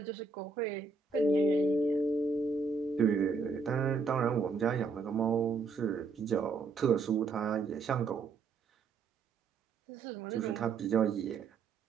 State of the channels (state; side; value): quieter; left; 4.5 dB